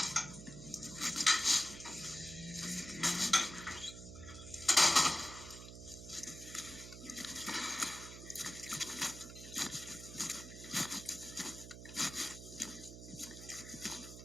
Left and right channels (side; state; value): right; noise; hum, 12 dB below the sound